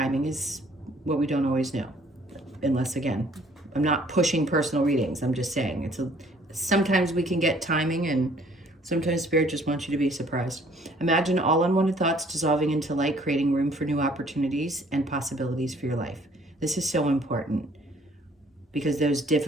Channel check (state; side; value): normal; both; correlation 0.59